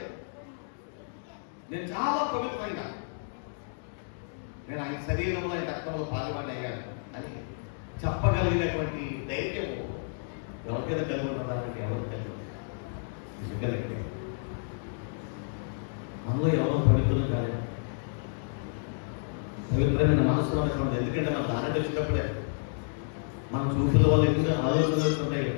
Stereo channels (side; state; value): right; silent; digital silence